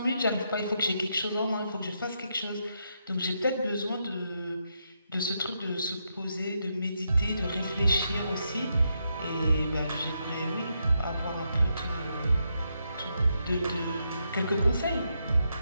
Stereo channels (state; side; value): inverted; both; correlation -0.81